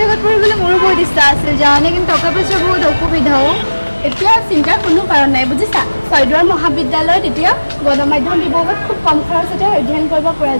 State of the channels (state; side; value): inverted; both; correlation -1.00